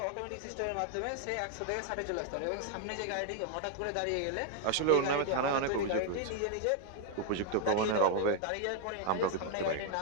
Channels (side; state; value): both; different; correlation 0.00